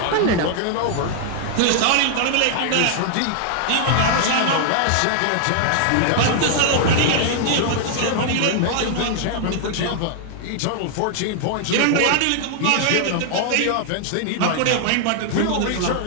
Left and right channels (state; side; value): different; both; correlation 0.00